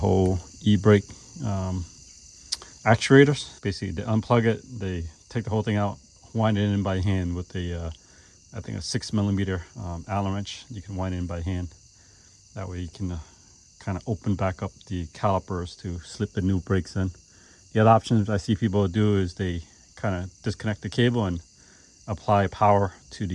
e-brake actuators. Basically, they unplug it, they take the whole thing out, wind it in by hand with a, I think a 6mm Allen wrench. You can wind it in by hand. That way you can kind of open back up the calipers to slip the new brakes in. The other options I see people do is they kind of disconnect the cable and apply power to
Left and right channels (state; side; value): identical; both; correlation 1.00